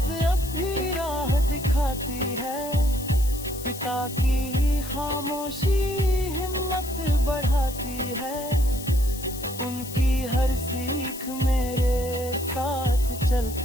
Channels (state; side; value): noise; left; hiss, 12 dB below the sound